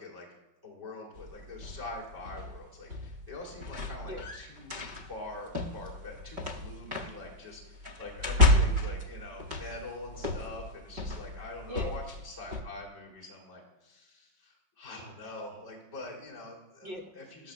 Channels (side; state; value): left; late; 5.2 ms